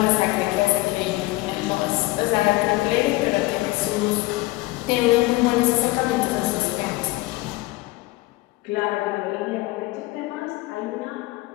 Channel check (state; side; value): quieter; right; 20.3 dB